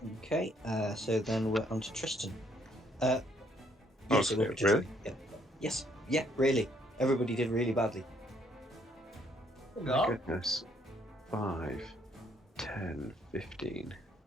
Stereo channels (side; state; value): both; normal; correlation 0.67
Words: Okay, so then we're on to Tristan. Yes, it will Okay, be Tristan. really? Yeah. Yes. Yeah, really. Everybody did really badly. Oh my goodness. 5, 10, 15,